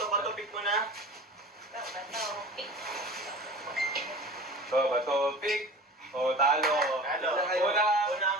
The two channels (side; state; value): both; normal; correlation 0.37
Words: pick mo na. So, bato, pick. O, talo.